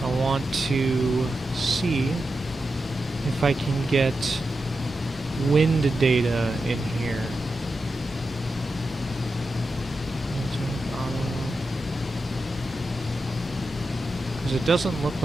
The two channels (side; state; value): both; normal; correlation 0.89